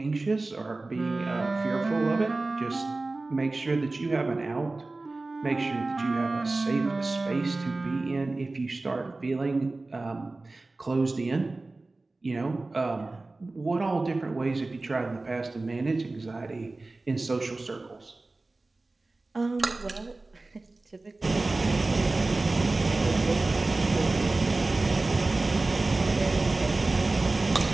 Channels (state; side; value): quieter; left; 3.2 dB